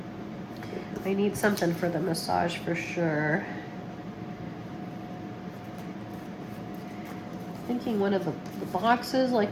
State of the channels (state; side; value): identical; both; correlation 1.00